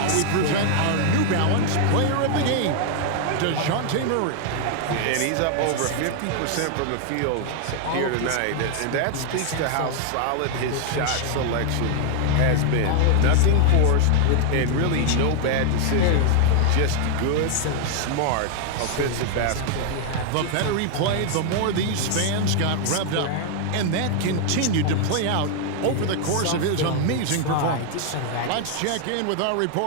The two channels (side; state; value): both; different; correlation 0.00